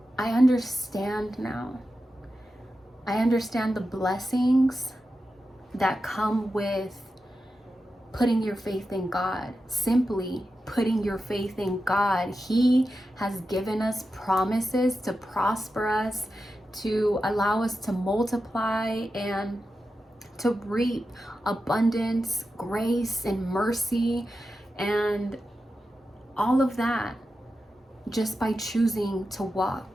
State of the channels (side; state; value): both; normal; correlation 0.91